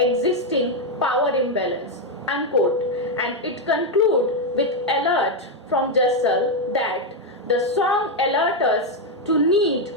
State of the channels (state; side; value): normal; both; correlation 0.04